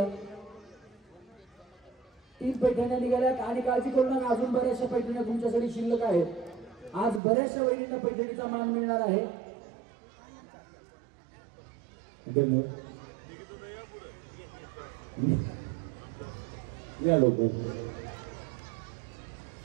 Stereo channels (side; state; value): left; drops out; at 7.2 s